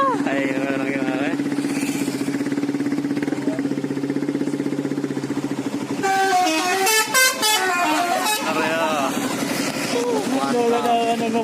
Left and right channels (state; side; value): identical; both; correlation 1.00